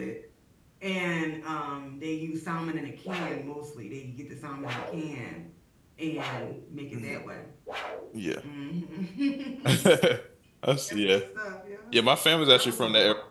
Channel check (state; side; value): identical; both; correlation 1.00